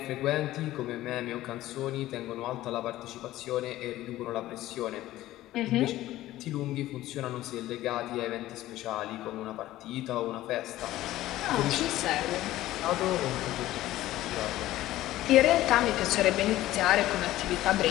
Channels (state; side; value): quieter; right; 15.4 dB